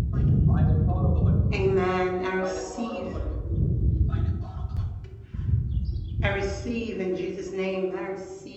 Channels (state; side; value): identical; both; correlation 1.00